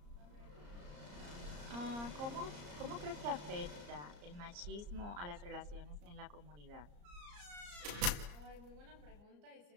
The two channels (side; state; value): left; late; 34 ms